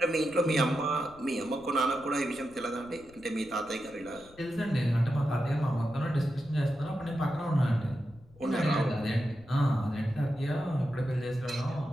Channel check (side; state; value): left; noise; rumble, 25 dB below the sound